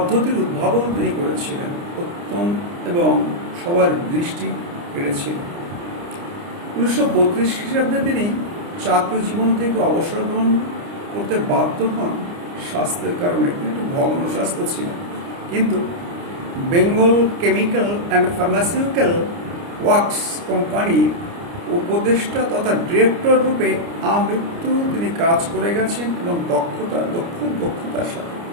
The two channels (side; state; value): left; late; 29 ms